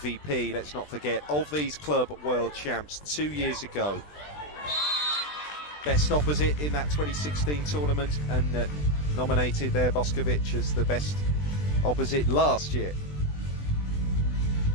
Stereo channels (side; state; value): right; late; 20 ms